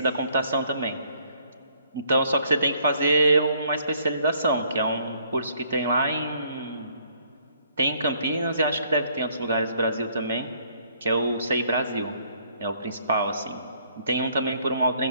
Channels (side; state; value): both; inverted; correlation -0.64